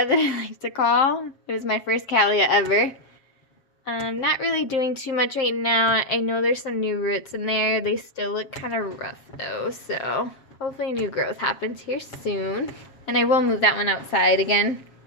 that I like to call. It was my first cattleya ever. Not really doing too much right now. I know there's some new roots in there. They still look kind of rough though, so hopefully new growth happens here soon. And I will move that one outside again.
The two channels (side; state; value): right; late; 7.4 ms